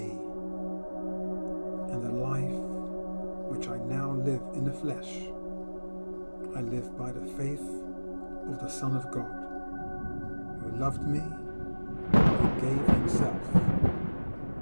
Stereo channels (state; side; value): inverted; both; correlation -1.00